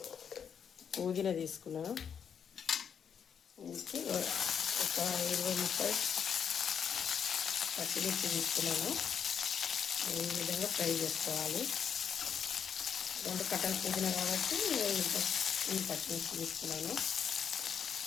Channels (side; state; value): right; quieter; 7.5 dB